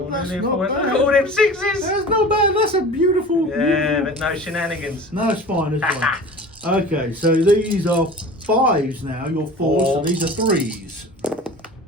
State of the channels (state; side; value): normal; both; correlation 0.39